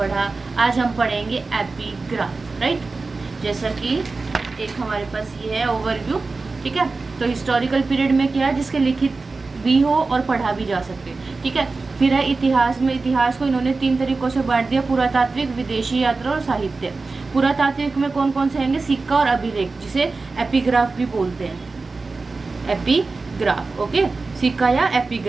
आज हम पढ़ेंगे एपिग्राफ, राइट। जैसा कि एक हमारे पास ये है ओवरव्यू, ठीक है। तो हिस्टोरिकल पीरियड में क्या है, जिसके लिखित भी हो और पढ़ा भी जा सके, ठीक है। फिर है इतिहास में, इतिहास को इन्होंने 3 तरीकों से बांट दिया: पुरातात्विक, विदेशी यात्रा और साहित्य। पुरातात्विक में कौन कौन से आएंगे? सिक्का और अभिलेख, जिसे एपिग्राफ भी बोलते हैं। Epigraph, okay. सिक्का या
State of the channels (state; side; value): quieter; left; 3.8 dB